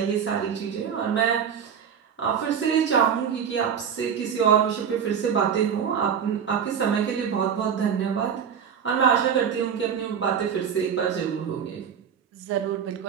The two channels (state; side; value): quieter; left; 7.7 dB